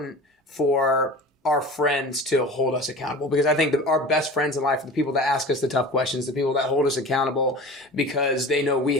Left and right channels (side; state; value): both; normal; correlation 0.36